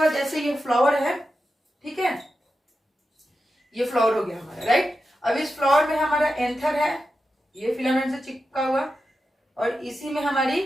जैसे ये फ्लावर है, ठीक है, ये फ्लावर हो गया हमारा, राइट। अब इस फ्लावर में हमारा एंथर है, ये फिलामेंट से चिपका हुआ, और इसी में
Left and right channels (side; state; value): both; normal; correlation 0.90